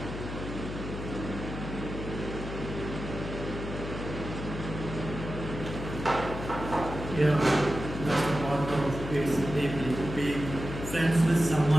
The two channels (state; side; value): noise; left; hum, 7 dB below the sound